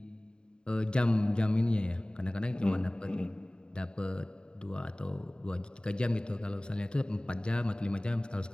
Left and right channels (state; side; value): late; right; 0.049 ms